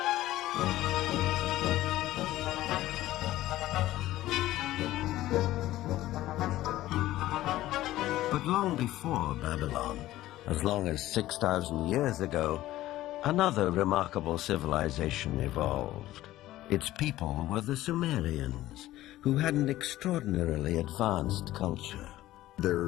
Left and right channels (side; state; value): right; quieter; 15.4 dB